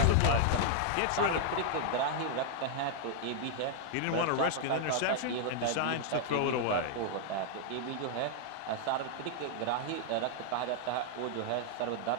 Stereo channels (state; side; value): different; both; correlation 0.00